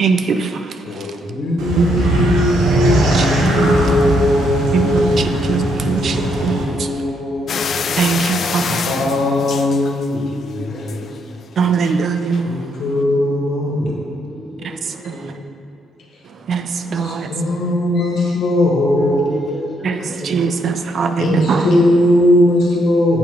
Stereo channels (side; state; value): both; normal; correlation 0.74